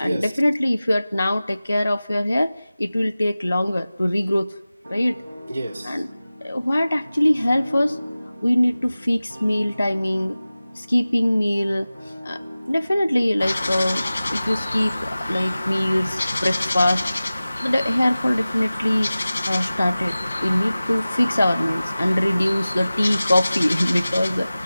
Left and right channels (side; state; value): both; inverted; correlation -0.97